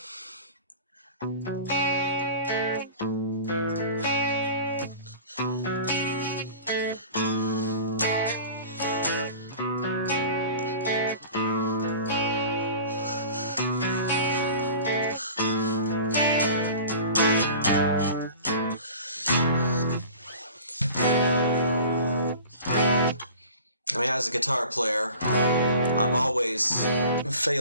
As a guitar player, I've always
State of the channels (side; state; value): both; inverted; correlation -0.41